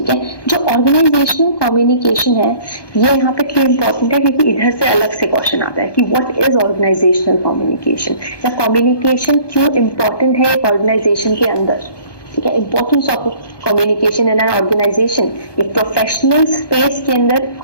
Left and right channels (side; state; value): right; late; 1.2 ms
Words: है, जो ऑर्गेनाइजेशनल कम्युनिकेशन है ये यहाँ पे क्यों इंपॉर्टेंट है? क्योंकि इधर से अलग से क्वेश्चन आता है कि व्हाट इज ऑर्गेनाइजेशनल कम्युनिकेशन, या कम्युनिकेशन क्यों इंपॉर्टेंट है एक ऑर्गेनाइजेशन के अंदर। ठीक है, importance of communication in an organisation, एक प्रोफेशनल स्पेस के अंदर